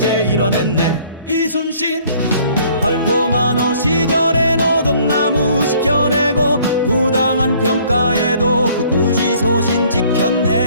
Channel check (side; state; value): both; inverted; correlation -0.58